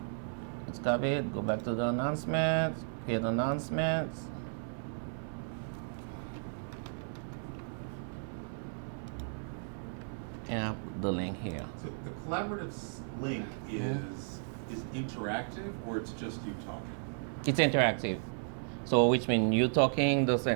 Let's copy it, go back to the announcements, create announcements. And I'll put the link here. So the collaborative link is interactive, or it's just you talking? It's interactive. So which means you talking the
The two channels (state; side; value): silent; left; 55 dB below the other